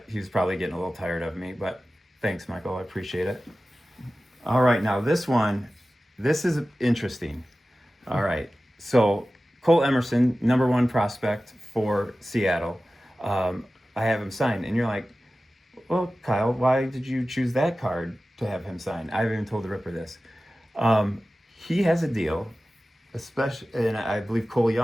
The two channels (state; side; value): normal; both; correlation 0.96